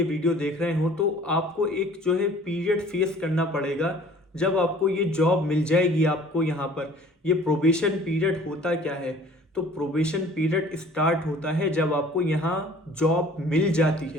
वीडियो देख रहे हो, तो आपको एक जो है पीरियड फेस करना पड़ेगा जब आपको ये जॉब मिल जाएगी। आपको यहाँ पर ये प्रोबेशन पीरियड होता क्या है? तो प्रोबेशन पीरियड स्टार्ट होता है जब आपको यहाँ जॉब मिल जाती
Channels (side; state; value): both; normal; correlation 0.51